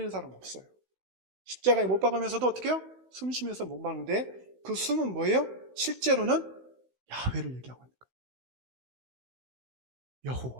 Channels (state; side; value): late; left; 16 ms